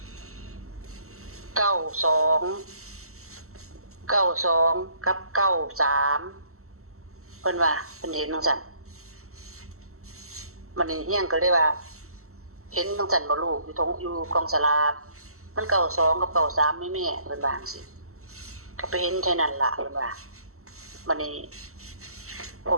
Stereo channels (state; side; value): late; left; 0.63 ms